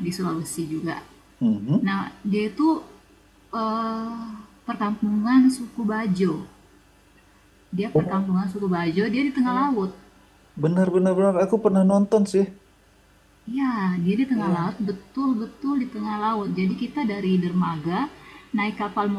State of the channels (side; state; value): both; identical; correlation 1.00